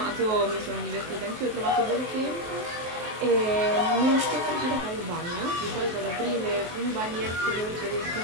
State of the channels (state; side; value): late; left; 23 ms